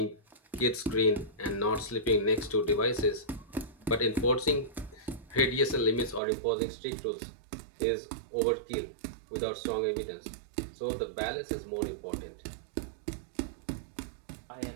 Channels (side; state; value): left; drops out; at 6.2 s